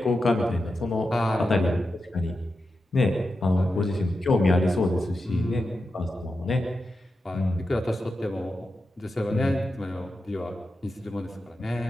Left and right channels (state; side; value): normal; both; correlation 0.89